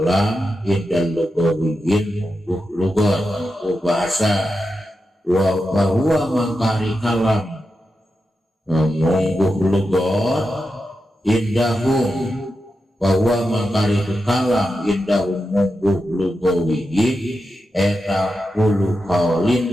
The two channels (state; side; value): normal; both; correlation 0.89